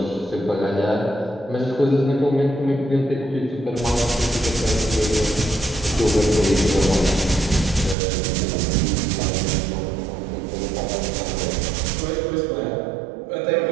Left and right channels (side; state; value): left; drops out; at 8.0 s